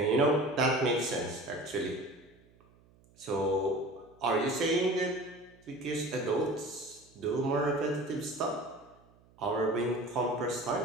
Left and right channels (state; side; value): noise; right; hum, 29 dB below the sound